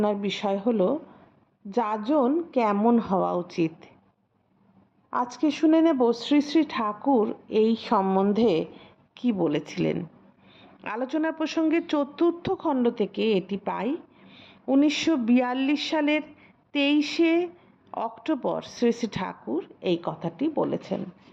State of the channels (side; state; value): both; identical; correlation 1.00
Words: বিষয় হলো যাজন কেমন হওয়া উচিত। আজকে শুনে নেব শ্রী শ্রী ঠাকুর এই সম্বন্ধে কি বলেছিলেন। আলোচনার প্রসঙ্গে চতুর্থ খণ্ড থেকে এটি পাই। 1942 সালের 23শে অক্টোবর শ্রী শ্রী ঠাকুর এই কথাটি বলেছেন।